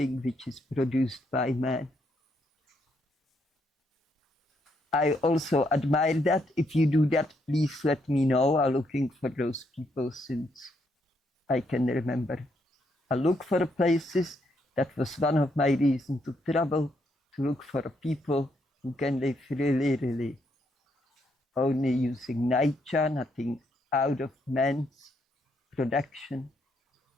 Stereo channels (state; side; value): normal; both; correlation 0.75